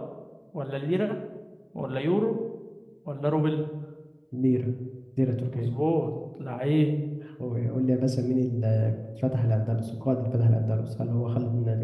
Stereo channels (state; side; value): identical; both; correlation 1.00